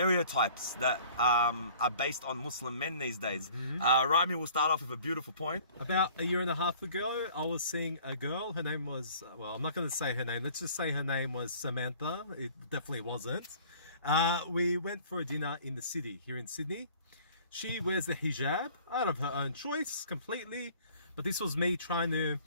that are based on Muslim men these days. Rami will start off with a beautiful point. About a year and a half ago, I was seeing a girl. Her name was, well, I'm not going to say her name. Let's just say her name was Samantha. It definitely wasn't. We went for a dinner in the city, here in Sydney. She wears the hijab out of her own choice completely. But this was me trying to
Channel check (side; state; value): both; inverted; correlation -0.51